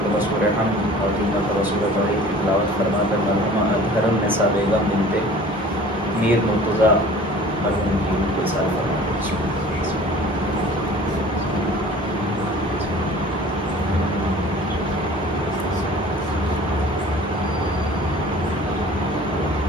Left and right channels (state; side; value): normal; both; correlation 0.45